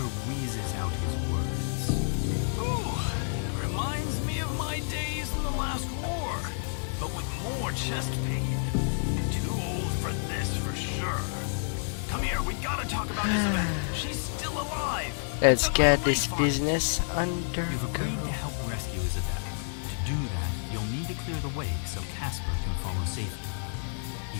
wheezes out his words. Ooh, reminds me of my days in the last war, but with more chest pain. Too old for this for sure. Come here, we gotta talk about Isabel. She's still alive. Let's get this business under You've agreed to control. help rescue Isabel. To do that, you'll need to clear the way so Casper can follow safely. He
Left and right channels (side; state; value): right; silent; digital silence